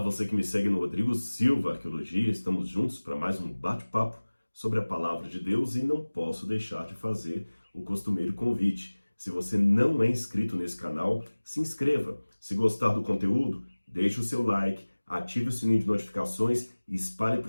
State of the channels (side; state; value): both; inverted; correlation -1.00